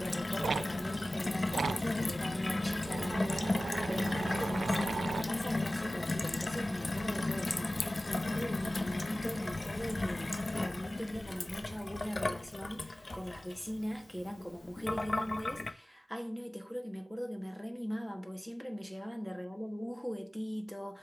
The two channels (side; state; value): both; normal; correlation 0.97